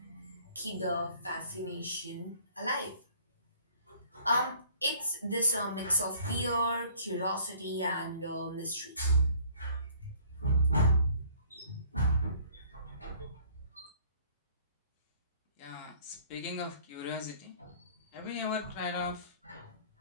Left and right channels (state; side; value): inverted; both; correlation -0.56